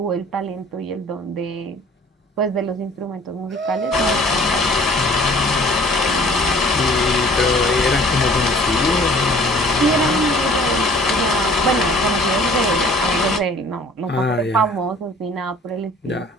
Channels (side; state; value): both; normal; correlation 0.53